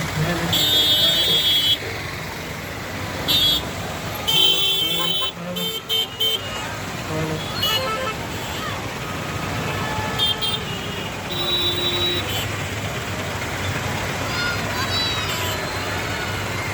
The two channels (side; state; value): both; identical; correlation 1.00